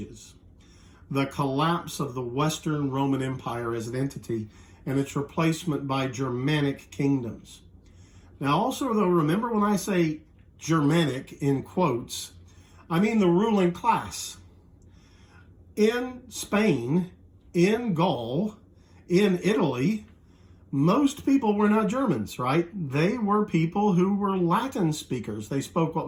The collapse of the Western Roman Empire as an entity and its replacement by Germanic kingdoms. Now also, though, remember when I say Germanic in quotes, I mean the ruling class. In Spain, in Gaul, in Italy, most people were not Germans, right? They were people who were Latin speakers. They spoke what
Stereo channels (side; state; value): both; identical; correlation 1.00